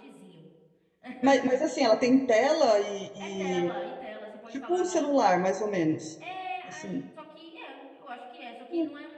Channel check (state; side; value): identical; both; correlation 1.00